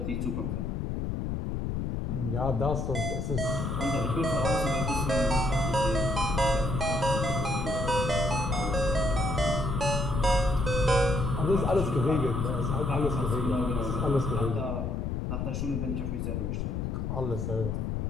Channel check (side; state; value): left; noise; rumble, 1 dB below the sound